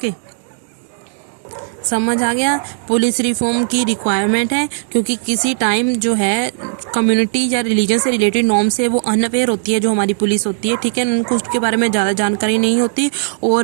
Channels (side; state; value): left; silent; digital silence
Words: समझ आ गया। पुलिस रिफॉर्म की रिक्वायरमेंट है क्योंकि किसी टाइम जो है कम्युनिटी या रिलीजन से रिलेटेड नॉर्म से वो अनअवेयर होती है, जो हमारी पुलिस होती है, ठीक है, उनको उसके बारे में ज़्यादा जानकारी नहीं होती